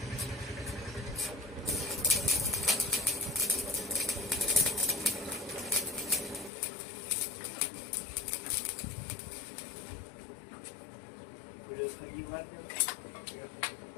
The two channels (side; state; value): right; drops out; at 6.5 s